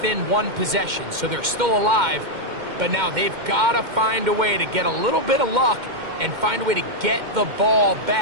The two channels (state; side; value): late; left; 2.1 ms